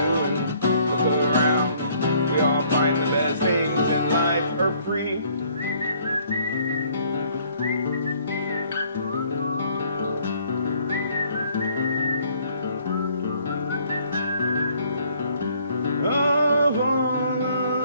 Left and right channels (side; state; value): both; inverted; correlation -0.62